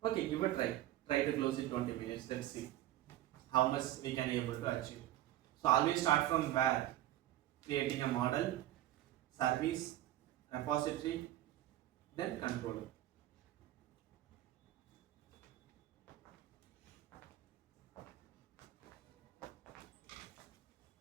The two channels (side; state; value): left; quieter; 14.2 dB